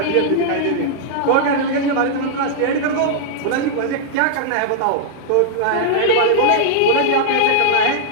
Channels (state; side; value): different; both; correlation -0.02